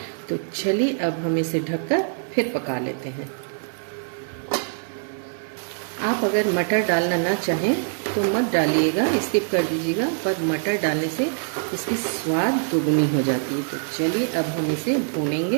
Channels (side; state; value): left; silent; digital silence